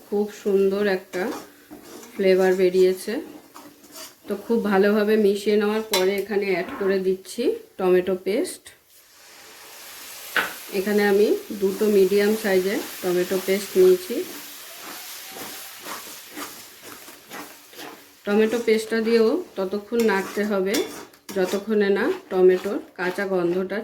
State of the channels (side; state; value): both; identical; correlation 1.00